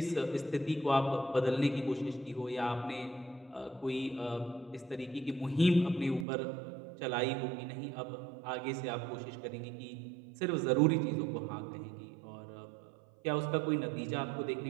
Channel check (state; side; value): drops out; left; at 6.2 s